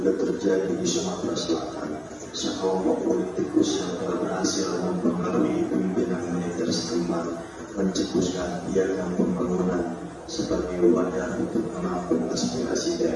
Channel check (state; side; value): identical; both; correlation 1.00